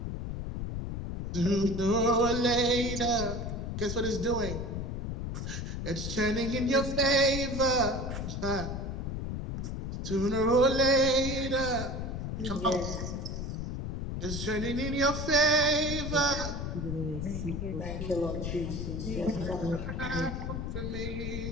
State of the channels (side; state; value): left; noise; rumble, 4 dB below the sound